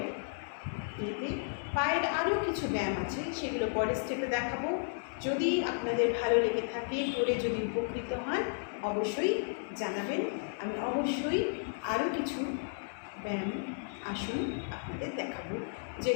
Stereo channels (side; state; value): right; silent; 55 dB below the other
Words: ইয়েতে। পায়ের আরও কিছু ব্যায়াম আছে, সেগুলো পরের স্টেপে দেখাবো। যদি আপনাদের ভালো লেগে থাকে, করে যদি উপকৃত হন, অবশ্যই জানাবেন। আমি অবশ্যই আরও কিছু ব্যায়াম, আসন আপনাদের দেখাবো,